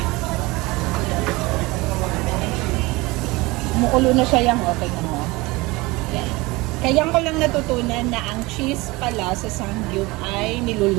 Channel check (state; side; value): quieter; left; 22.5 dB